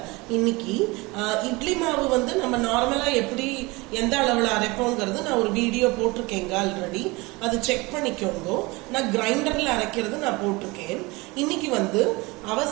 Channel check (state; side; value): quieter; left; 23.9 dB